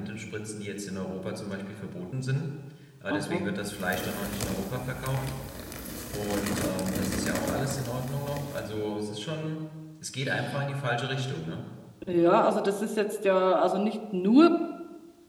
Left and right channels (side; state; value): both; identical; correlation 1.00